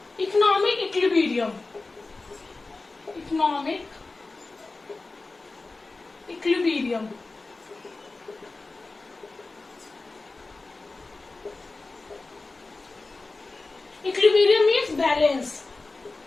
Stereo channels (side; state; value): right; quieter; 3.5 dB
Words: economic equilibrium. Economic equilibrium equilibrium means balance.